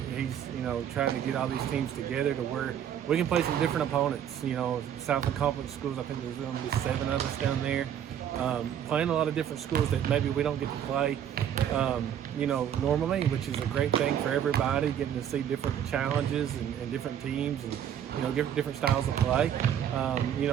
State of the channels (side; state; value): left; quieter; 9.6 dB